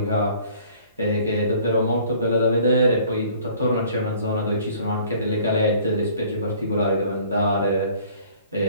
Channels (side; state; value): both; inverted; correlation -0.53